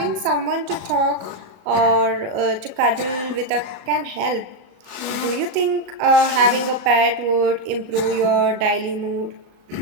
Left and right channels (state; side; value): late; left; 38 ms